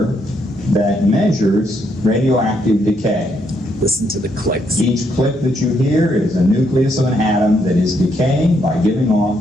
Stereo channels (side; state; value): both; normal; correlation 0.75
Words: that measures radioactive decay. Listen to the clicks. Each click that you hear is a nucleus of an atom that is decaying by giving